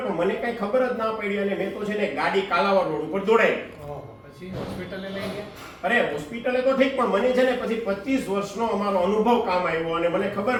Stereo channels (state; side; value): identical; both; correlation 1.00